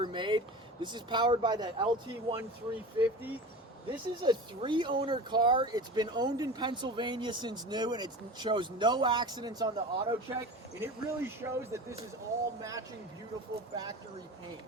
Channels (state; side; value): normal; both; correlation 0.33